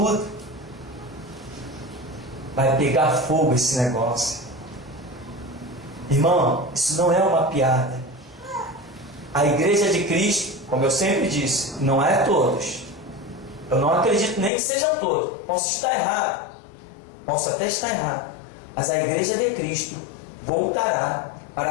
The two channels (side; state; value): right; drops out; at 14.5 s